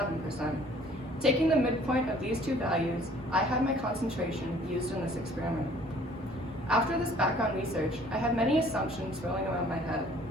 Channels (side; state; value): both; normal; correlation 0.55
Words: Taking the midpoint of these 2 values, I had my concentration used in this experiment. After this background research, I had many assumptions swirling around my head.